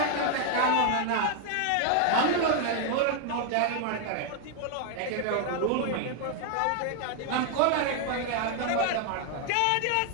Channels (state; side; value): different; both; correlation 0.00